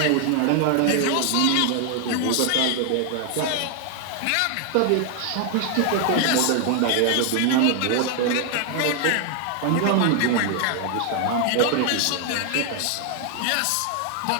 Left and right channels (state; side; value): different; both; correlation 0.00